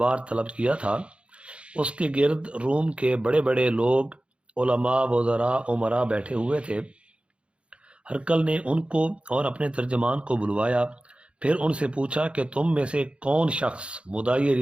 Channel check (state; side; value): late; left; 0.059 ms